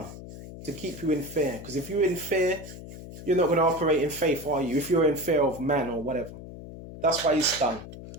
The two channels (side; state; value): left; noise; hum, 13 dB below the sound